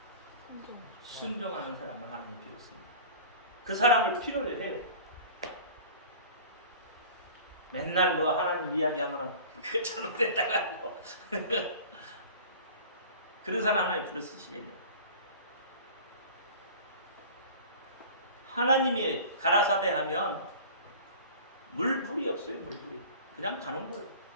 순종하는 사람을 하나님이 필요했습니다. 그 사람을 필요로 해요. 맨날 뭐 하나님 이야기하면 그거 잘못됐다고 하고 그런 사람 하나님 불러 쓰시겠네요. 하나님이 가라사대 하면 물불이 없어요. 물불이 그냥 가는 거예요.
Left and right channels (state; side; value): inverted; both; correlation -0.41